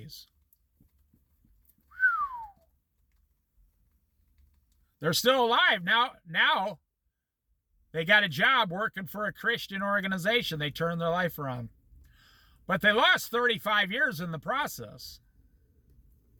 They're still alive. Now they got a job working for a Christian organization. They turned their life around. But they lost 35 years in the process.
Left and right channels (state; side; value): identical; both; correlation 1.00